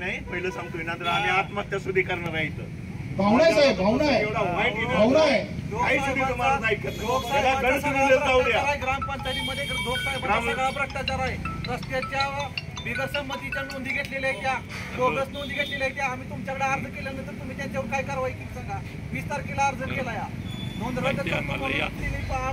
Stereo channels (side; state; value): both; identical; correlation 1.00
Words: पहिलं सांगतोय ना, तर आम्ही आत्महत्या सुद्धा करणार आहे. इथं भावना आहे साहेब, भावना आहे, भावना आहे. ग्रामपंचायतीमध्ये सगळा भ्रष्टाचार आहे. रस्त्याच्या बिगर संमतीच्या नोंदी घेतलेल्या आहेत, त्या बोगस नोंदी घेतलेल्या आहेत. आम्ही तुमच्याकडे अर्ज केल्यानंतर तुम्ही त्यांच्यावर काय कारवाई केली सांगा? 20 तारखेला अर्ज केला, या नोंद रद्द